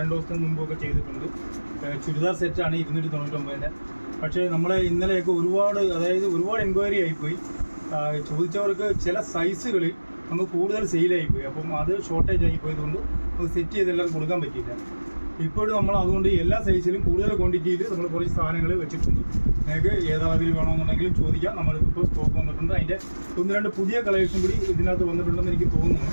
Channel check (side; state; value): both; inverted; correlation -1.00